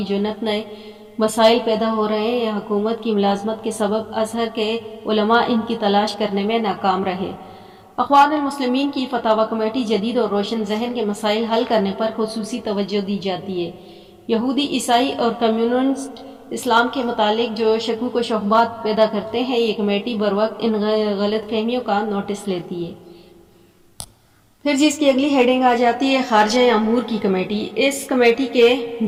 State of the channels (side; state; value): both; identical; correlation 1.00